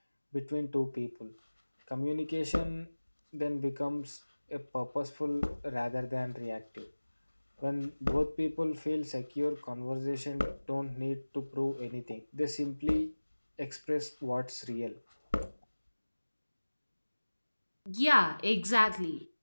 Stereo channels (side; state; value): both; inverted; correlation -1.00